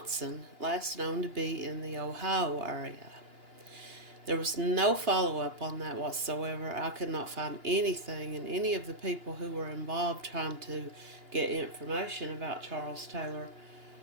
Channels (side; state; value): left; late; 2.9 ms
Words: last known to be in the Ohio area. There was no follow-up on that whatsoever. I could not find anything, and any of the people who were involved trying to get information about Charles Taylor